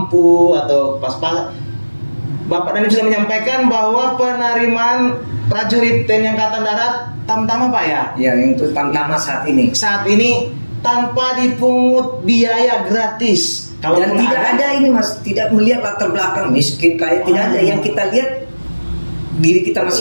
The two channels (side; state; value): both; inverted; correlation -1.00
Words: atau pas-pas. Bapak Dandim sudah menyampaikan bahwa penerimaan prajurit TNI Angkatan Darat tamtama Pak ya? Ya, itu tamtama saat ini. Saat ini tanpa dipungut biaya gratis. Dan tidak ada ini Mas, tidak melihat latar belakang miskin kaya, tidak ada. Yang kita lihat diri kita